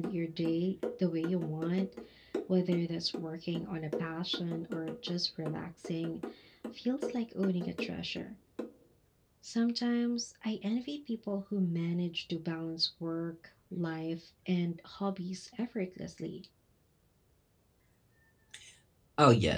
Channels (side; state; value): both; identical; correlation 1.00